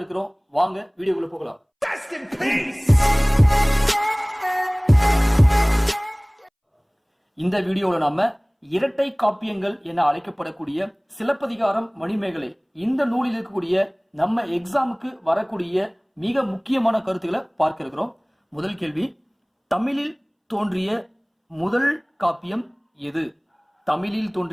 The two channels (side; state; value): both; identical; correlation 1.00